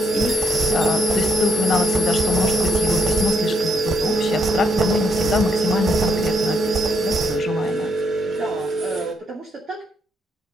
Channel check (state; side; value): normal; both; correlation 0.74